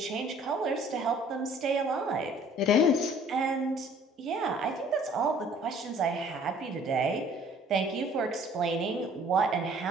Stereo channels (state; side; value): normal; both; correlation 0.54